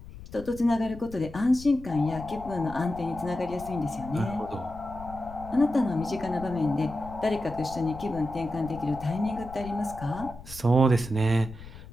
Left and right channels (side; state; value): left; noise; rumble, 15 dB below the sound